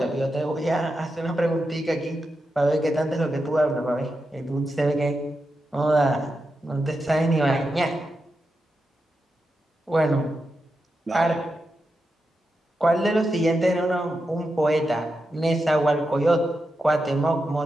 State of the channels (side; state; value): both; normal; correlation 0.88